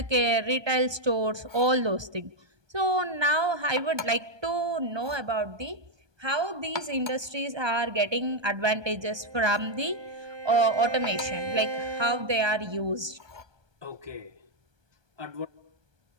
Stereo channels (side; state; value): left; late; 1.2 ms